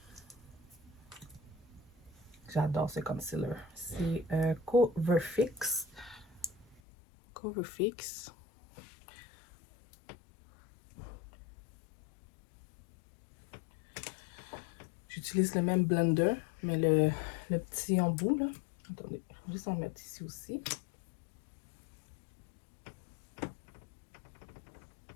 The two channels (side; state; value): right; drops out; at 6.8 s